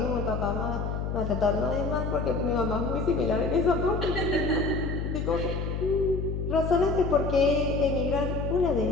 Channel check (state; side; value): noise; left; hum, 3 dB below the sound